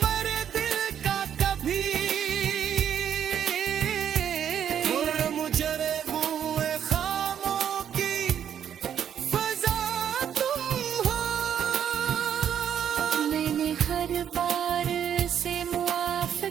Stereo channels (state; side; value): quieter; left; 9.1 dB